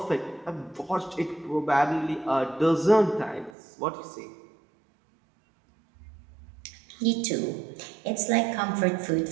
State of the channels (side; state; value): left; drops out; at 3.6 s